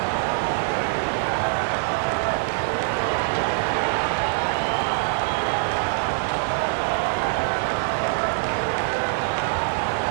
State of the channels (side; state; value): left; silent; digital silence